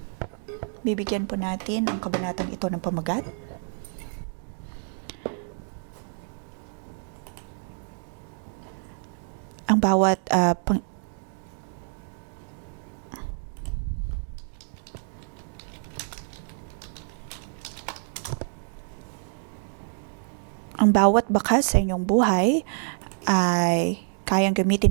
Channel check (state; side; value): silent; left; digital silence